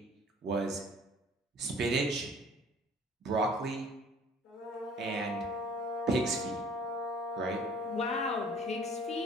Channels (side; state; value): both; normal; correlation 0.52